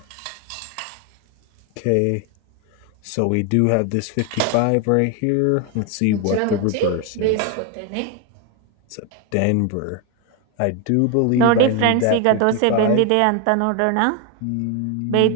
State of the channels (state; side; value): different; both; correlation 0.01